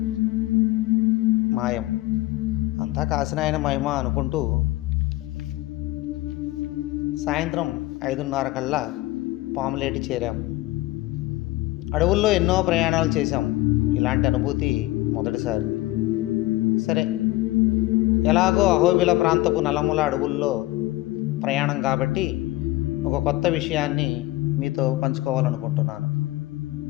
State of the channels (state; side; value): quieter; right; 18.5 dB